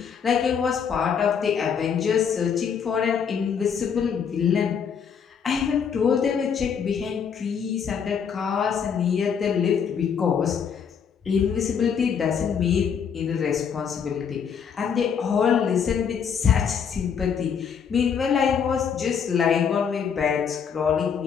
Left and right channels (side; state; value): right; quieter; 7.1 dB